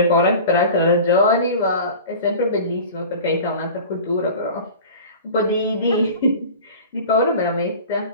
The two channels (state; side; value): inverted; both; correlation -0.38